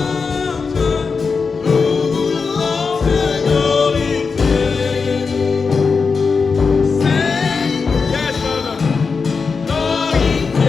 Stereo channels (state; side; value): quieter; right; 5.0 dB